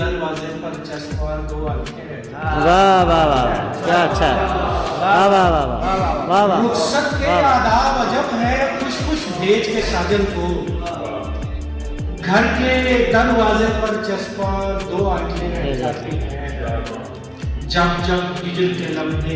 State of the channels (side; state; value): both; identical; correlation 1.00